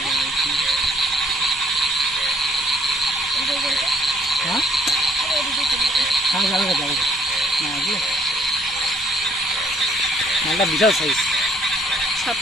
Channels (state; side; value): normal; both; correlation 0.63